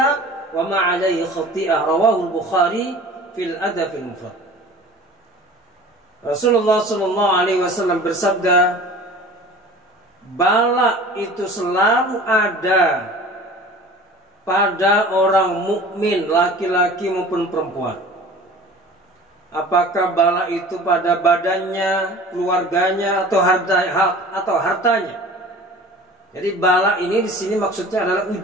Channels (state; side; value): normal; both; correlation 0.42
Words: wa ma 'alaihi khati'ah. Rawahu al-Bukhari fil Adab al-Mufrad. Rasulullah SAW bersabda, bala itu selalu ada pada orang mukmin, laki-laki maupun perempuan. Apakah bala itu pada badannya, keluarganya, atau hartanya? Jadi bala ini di sini maksudnya adalah